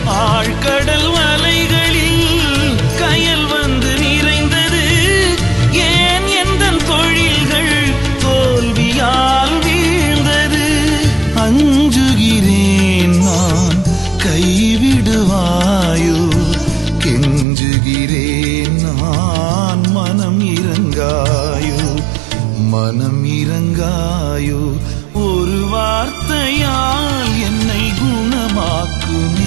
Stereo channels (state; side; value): drops out; left; at 17.4 s